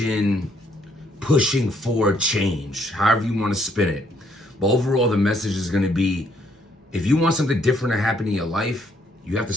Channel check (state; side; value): normal; both; correlation 0.69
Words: pushing for change, however you want to spin it. But overall, the message is going to be, if you want something different to happen in your life, you have to